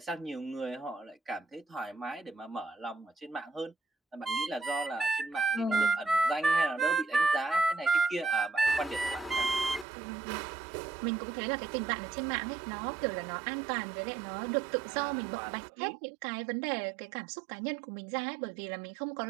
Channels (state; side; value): drops out; left; at 9.9 s